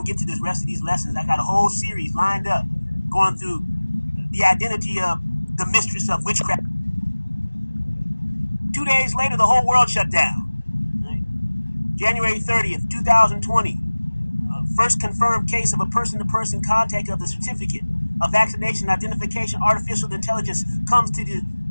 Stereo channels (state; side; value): inverted; both; correlation -1.00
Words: to get to the rest of these lessons. I got a whole series lined up, going through the identity of the mistress of witchcraft. 2 days later, the whole world shut down. Right? January 30th, 2020. First confirmed case of a person-to-person contact of the certificate of vaccination identification artificial intelligence comes to the